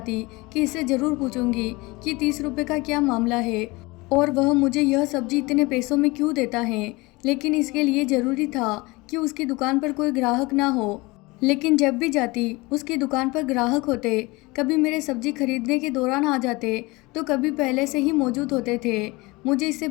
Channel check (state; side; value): quieter; right; 23.5 dB